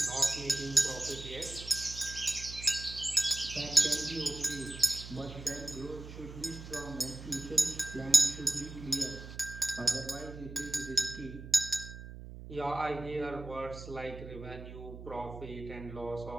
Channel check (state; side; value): noise; right; hum, 12 dB below the sound